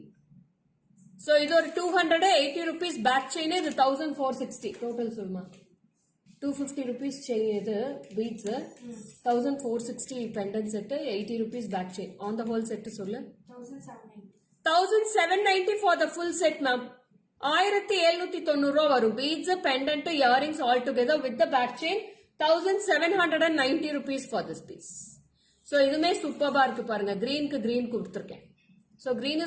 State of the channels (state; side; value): identical; both; correlation 1.00